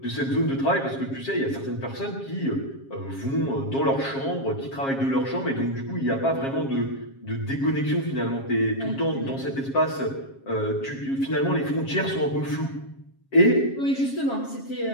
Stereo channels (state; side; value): late; right; 7.4 ms